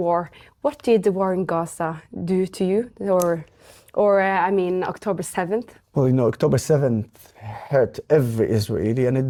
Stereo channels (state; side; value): identical; both; correlation 1.00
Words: what did the war in Gaza do to you? Or October 7th? Well, October 7th hurt every Israeli, and it